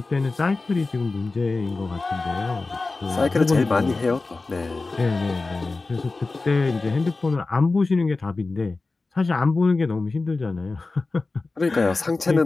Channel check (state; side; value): quieter; right; 3.6 dB